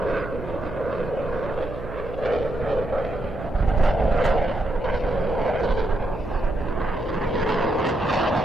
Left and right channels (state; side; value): noise; right; hum, 11 dB below the sound